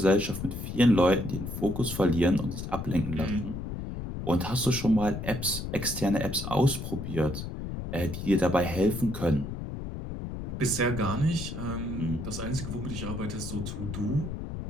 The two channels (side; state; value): left; noise; rumble, 6 dB below the sound